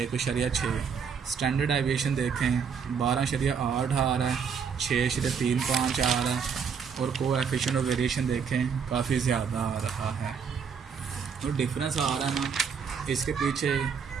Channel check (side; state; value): left; quieter; 6.4 dB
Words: 1.6। स्टैंडर्ड डेविएशन देखें 12.8 आ रहा है, 6.35 आ रहा है, और कोएफिशिएंट ऑफ वेरिएशन देखें काफ़ी ज़्यादा आ रहा है। तो डिफरेंस आ रहा है ना, इसके पीछे